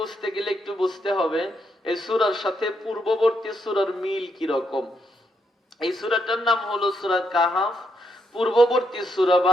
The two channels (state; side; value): normal; both; correlation 0.78